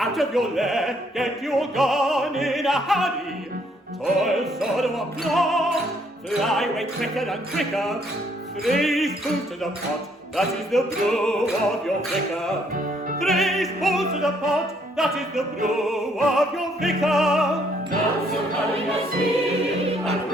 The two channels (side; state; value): both; normal; correlation 0.68